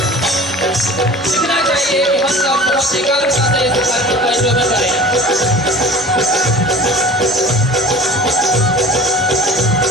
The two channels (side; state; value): both; normal; correlation 0.40